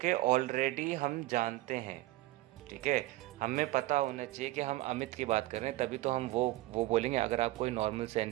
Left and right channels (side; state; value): left; quieter; 17.9 dB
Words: कि ऑलरेडी हम जानते हैं, ठीक है। हमें पता होना चाहिए कि हम अमित की बात कर रहे हैं, तभी तो हम वो बोलेंगे। अगर आप कोई नॉर्मल